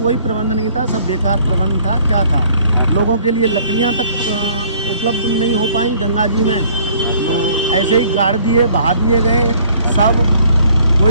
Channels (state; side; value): inverted; both; correlation -0.58